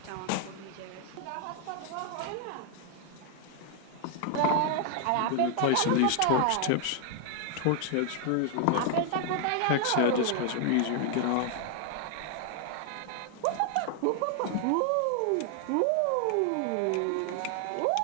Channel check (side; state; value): both; different; correlation 0.00